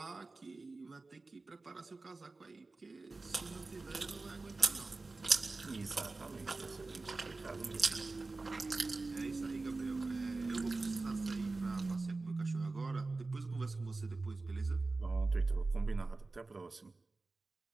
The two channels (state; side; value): quieter; left; 3.5 dB